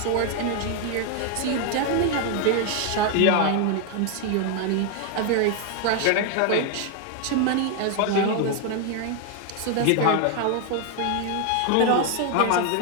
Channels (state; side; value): different; both; correlation 0.00